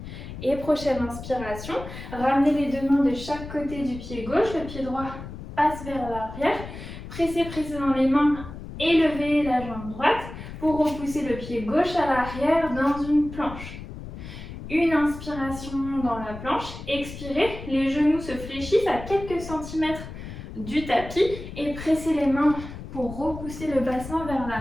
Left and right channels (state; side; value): noise; left; rumble, 11 dB below the sound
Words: Et prochaine inspiration, ramenez les deux mains de chaque côté du pied gauche, le pied droit passe vers l'arrière. Pressez dans les mains, élevez la jambe droite pour repousser le pied gauche à l'arrière dans une planche. Une inspiration dans la planche, expirez, les genoux se fléchissent à quelques centimètres du tapis et pressez les mains pour repousser le bassin vers